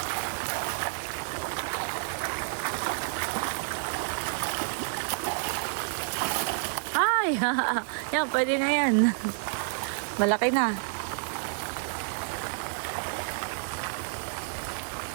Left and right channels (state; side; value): silent; left; digital silence